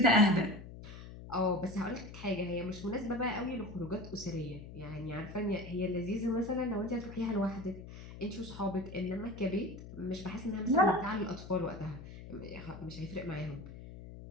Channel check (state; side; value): noise; left; hum, 13 dB below the sound